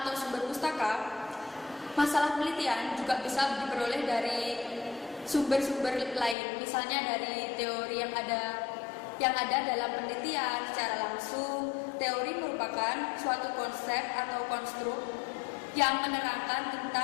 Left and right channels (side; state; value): right; drops out; at 6.4 s